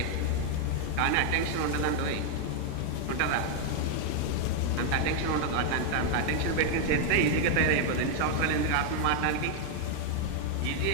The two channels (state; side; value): different; both; correlation 0.00